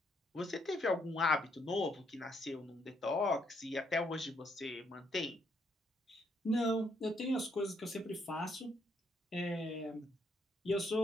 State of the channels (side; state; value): both; normal; correlation 0.73